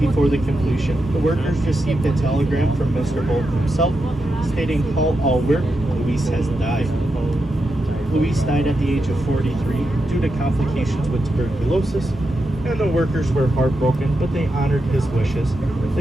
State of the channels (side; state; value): both; normal; correlation 0.87